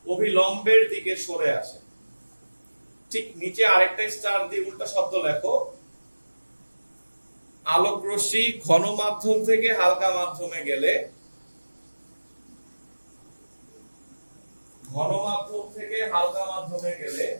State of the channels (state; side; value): inverted; both; correlation -1.00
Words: অভিলম্বের দিকে সরে আসে। ঠিক নিচে আরেকটা স্টার দিয়ে উল্টা শব্দ লেখো, আলোক রশ্মি ঘন মাধ্যম থেকে হালকা মাধ্যমে গেলে, ঘন মাধ্যম থেকে হালকা মাধ্যমে গেলে